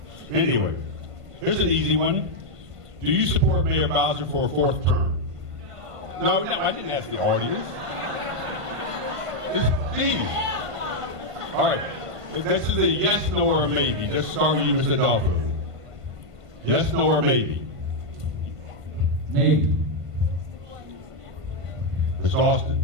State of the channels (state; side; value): late; left; 1.5 ms